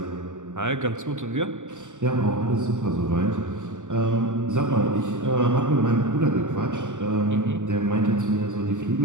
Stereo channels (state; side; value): late; left; 0.85 ms